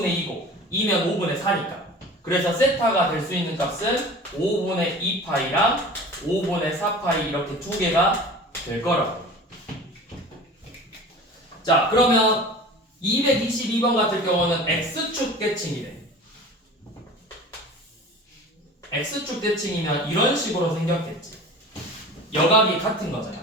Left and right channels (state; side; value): normal; both; correlation 0.39